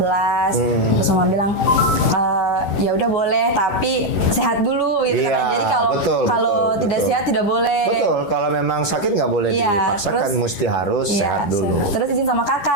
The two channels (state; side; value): late; right; 10 ms